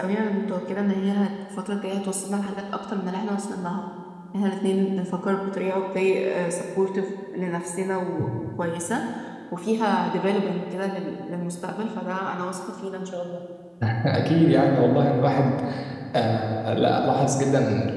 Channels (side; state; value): both; identical; correlation 1.00